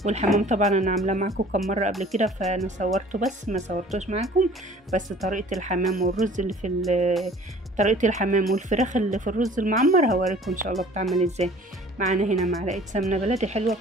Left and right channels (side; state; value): both; normal; correlation 0.49